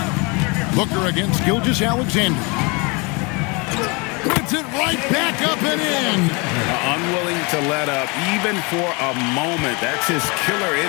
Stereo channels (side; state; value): right; quieter; 29.4 dB